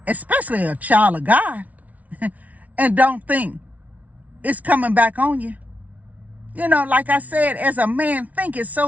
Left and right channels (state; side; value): late; left; 0.071 ms